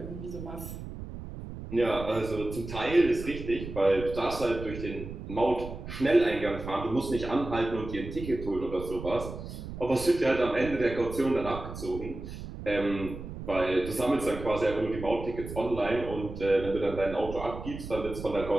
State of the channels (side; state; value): right; noise; rumble, 10 dB below the sound